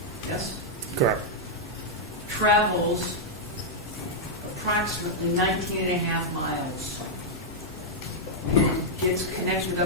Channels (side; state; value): both; normal; correlation -0.05